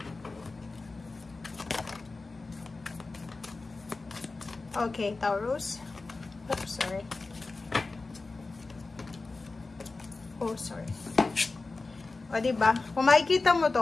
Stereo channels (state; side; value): quieter; right; 3.6 dB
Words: Okay, Taurus. Oops, sorry. Oh, sorry. O, diba? Kung makikita mo